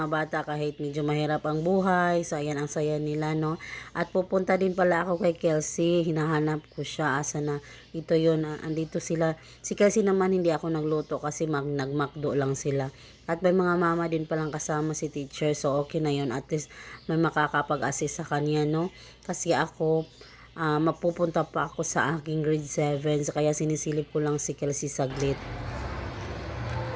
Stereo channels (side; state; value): both; identical; correlation 1.00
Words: bata kahit medyo mahirap ang buhay. So ayan, ang saya nila, no. At pupunta din pala ako kay Kelsey. Hinahanap ko siya. Asa na? Ito yun. Andito sila. Si Kelsey naman hindi ako nagluto kasi nagmakdo lang sila. At may mga mama din palang kasama si teacher. So okay na yun. At least may makakapag-assist sa kanya, no. Kasi ako, mapupunta pa ako sa aking grade 7. So, kaya sinisilip ko lang si Kelsey saglit.